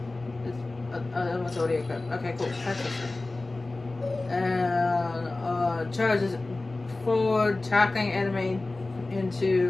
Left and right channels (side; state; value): right; quieter; 3.1 dB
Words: That one's already equipped. Okay, cool. And charges forward, attacking an